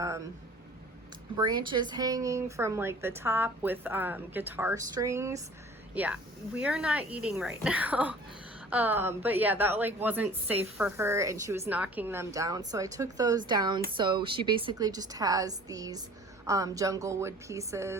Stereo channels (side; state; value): both; normal; correlation 0.47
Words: branches hanging from like the top with guitar strings. Yeah, we are not eating right now. But yeah, that like wasn't safe for her and she was knocking them down. So I took those down. So she basically just has these jungle wood